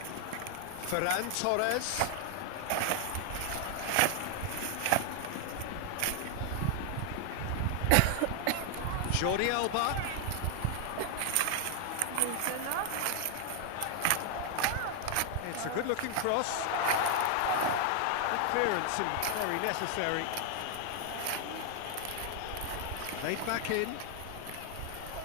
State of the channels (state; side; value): different; both; correlation 0.00